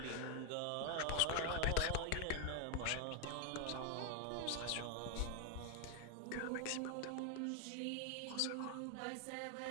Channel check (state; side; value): different; both; correlation 0.01